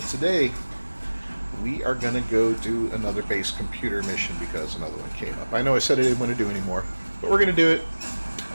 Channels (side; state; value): both; inverted; correlation -1.00